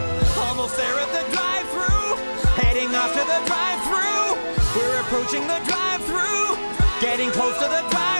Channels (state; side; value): inverted; both; correlation -1.00